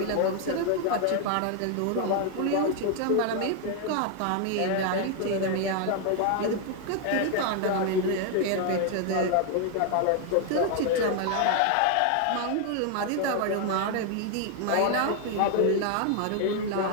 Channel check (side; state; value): both; different; correlation 0.00